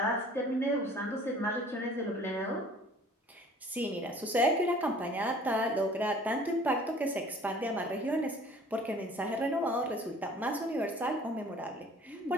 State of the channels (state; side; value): normal; both; correlation 0.50